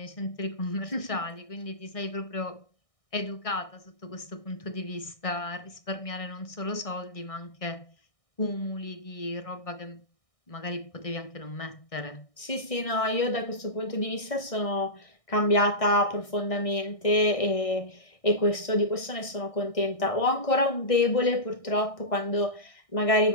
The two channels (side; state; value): right; late; 1.6 ms